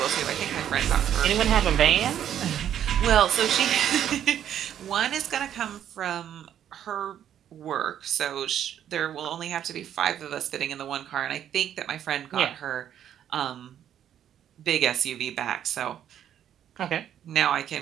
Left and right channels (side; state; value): left; quieter; 10.1 dB